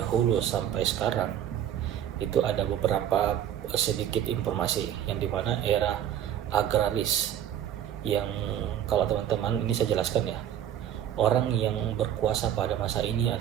sampai sekarang itu ada beberapa sedikit informasi yang dimana era agraris, yang kalau teman-teman ini saya jelaskan ya, orang yang berkuasa pada masa ini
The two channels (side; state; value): left; quieter; 10.4 dB